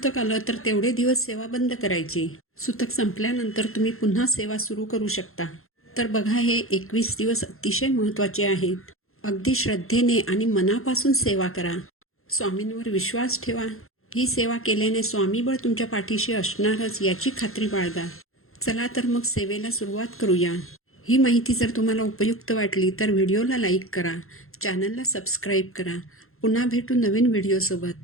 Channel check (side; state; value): right; late; 0.62 ms